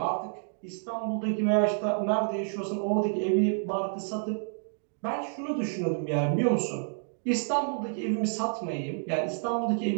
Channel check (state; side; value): silent; left; digital silence